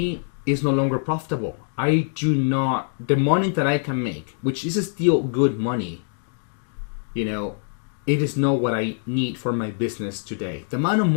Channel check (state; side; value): silent; right; digital silence